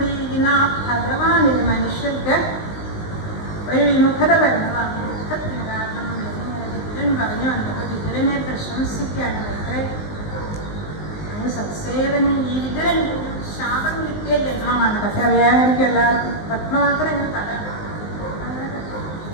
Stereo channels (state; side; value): late; right; 19 ms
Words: ആ ഭഗവാനിൽ മനുഷ്യർക്ക് ഒരു വിമുഖത വരുന്നതാണ്. വിമുഖത്തിന് കാരണം എന്നിങ്ങനെ വിതുരൻ പറഞ്ഞു വന്നത്. വിതുരനെ പ്രശംസിക്കുകയാണ്. എത്ര സത്സേവൻ ഈ വിതുരൻ ശാപം കിട്ടിയ ജന്മമാണ്. പക്ഷെ അറിയാമായിരിക്കും എല്ലാവർക്കും. പത്മമാത്രം ഇങ്ങനെ